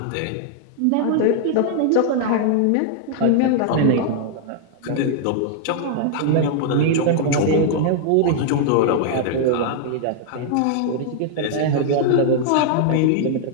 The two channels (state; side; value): different; both; correlation 0.00